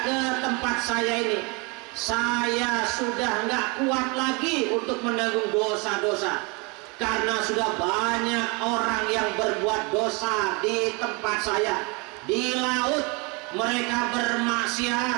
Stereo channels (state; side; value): quieter; left; 29.6 dB